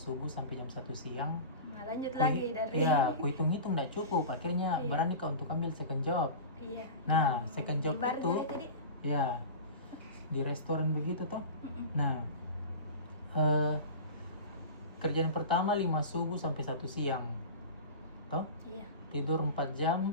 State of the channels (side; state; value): both; inverted; correlation -0.32